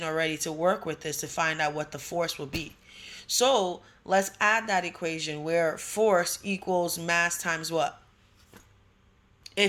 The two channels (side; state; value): both; identical; correlation 1.00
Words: already to work with this to find out what the force will be. So let's add that equation where force equals mass times what?